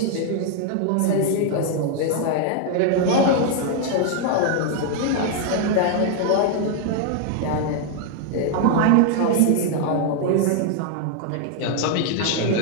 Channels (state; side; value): different; both; correlation 0.00